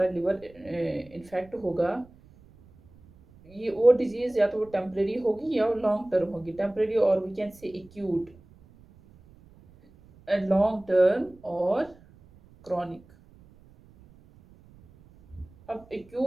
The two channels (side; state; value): right; noise; rumble, 26 dB below the sound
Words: लिवर इन्फेक्ट होगा, ये वो डिजीज़ या तो वो टेम्परेरी होगी या वो लॉन्ग टर्म होगी. टेम्परेरी और we can say acute, and long term और क्रॉनिक. अब